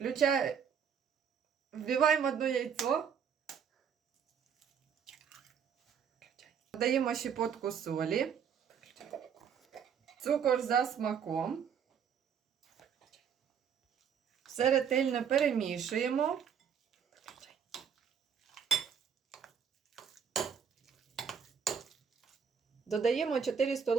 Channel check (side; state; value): left; quieter; 7.4 dB